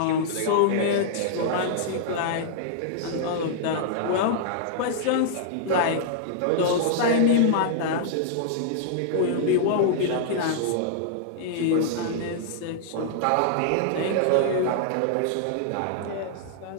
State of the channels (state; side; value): different; both; correlation -0.01